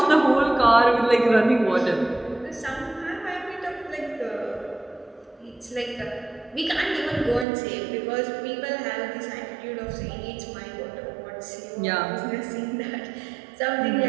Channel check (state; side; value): drops out; left; at 7.5 s